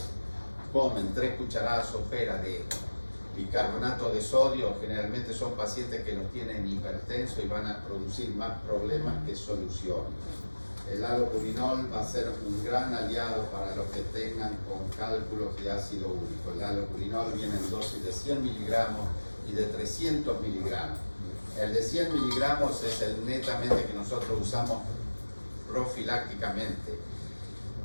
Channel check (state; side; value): inverted; both; correlation -1.00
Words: comen 3 cucharadas soperas de bicarbonato de sodio, generalmente son pacientes que los tienen hipertensos y van a producir más problemas que soluciones. El allopurinol va a ser un gran aliado para los que tengan con cálculos de ácido úrico. El allopurinol viene en dosis de 100 miligramos y de 300 miligramos. El de 100 miligramos es el netamente que nosotros usamos profilácticamente